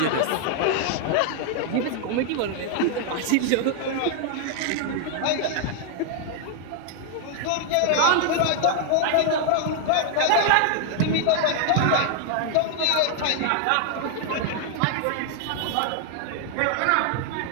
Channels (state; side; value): different; both; correlation 0.00